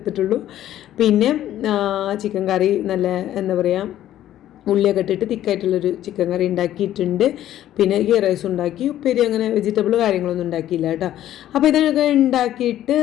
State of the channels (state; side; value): quieter; right; 12.5 dB